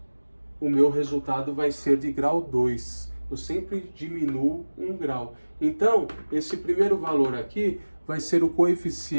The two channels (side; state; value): both; inverted; correlation -1.00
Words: o meu resultado vai ser de grau 2. Eu sempre diminuo um grau. Então, esse primeiro valor aqui vai ser o